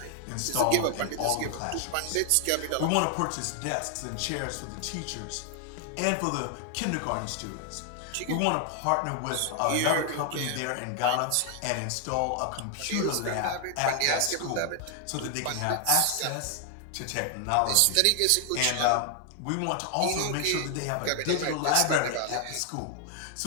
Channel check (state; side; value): different; both; correlation 0.00